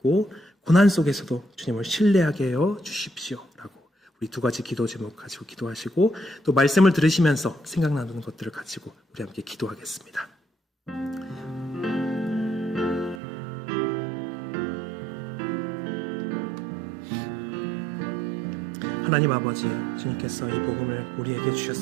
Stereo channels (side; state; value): left; drops out; at 13.2 s